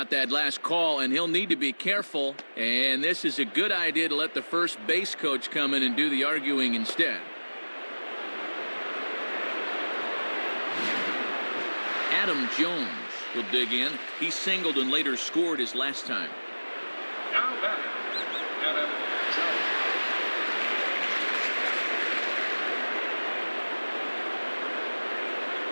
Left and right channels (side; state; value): both; inverted; correlation -1.00